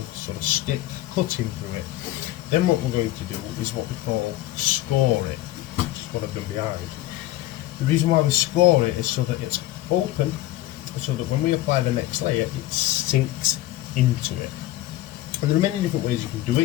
sort of stick cutting through it. Then what we're going to do is what we call score it, which is what I've done behind. The reason why we score it is so that it's open, so that when we apply the next layer, it sinks into it. And there are many different ways you can do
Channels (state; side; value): quieter; right; 15.8 dB